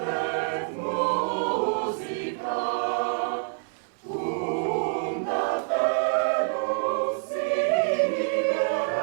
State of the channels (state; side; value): silent; left; 60 dB below the other